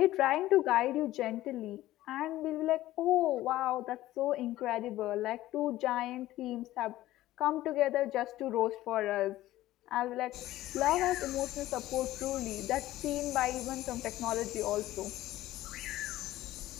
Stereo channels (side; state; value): right; quieter; 15.5 dB